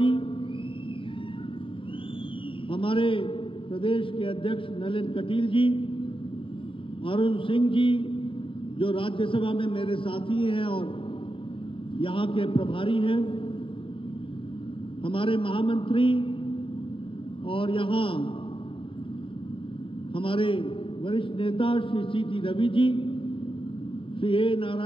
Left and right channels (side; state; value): right; late; 0.25 ms